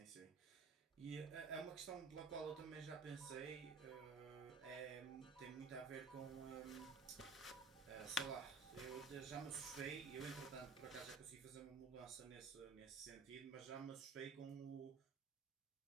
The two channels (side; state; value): left; quieter; 4.2 dB